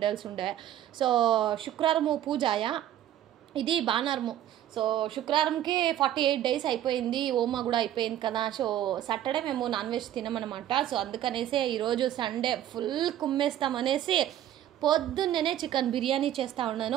ఉండే. శుక్రవారము పూజాయా, ఇది బాణారము. శుక్రవారంకి 48 days అయిపోయింది, ఓమా కూడా అయిపోయింది కదా. సాటర్డే మేము నాన్ వెజ్ తినమన్నమాట. అందుకనేసి ఈరోజు సండే ఫుల్ కుమ్మేస్తామనేసి పొద్దున్నే చికెన్ బిర్యానీ చేస్తూ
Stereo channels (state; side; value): quieter; left; 11.8 dB